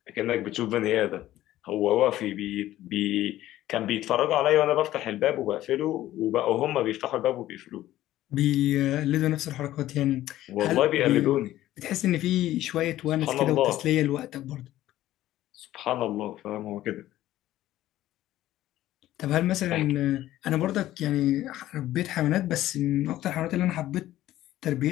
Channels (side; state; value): right; quieter; 14.4 dB